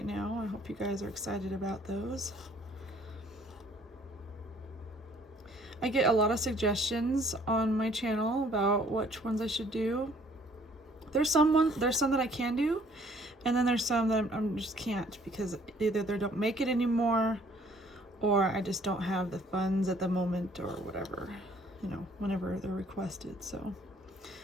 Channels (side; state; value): both; normal; correlation 0.59